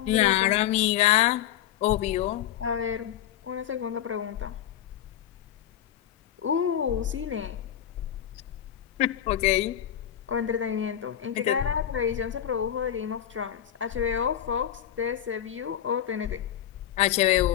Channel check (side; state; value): right; quieter; 10.8 dB